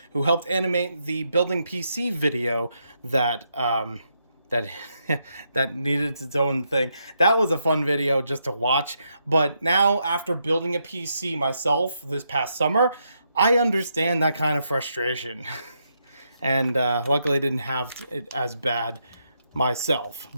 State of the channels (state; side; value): inverted; both; correlation -0.80